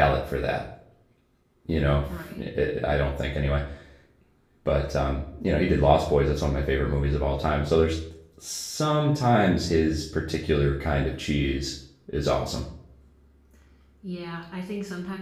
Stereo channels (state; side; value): identical; both; correlation 1.00